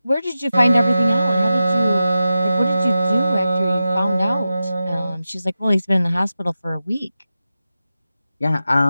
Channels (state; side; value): inverted; both; correlation -0.92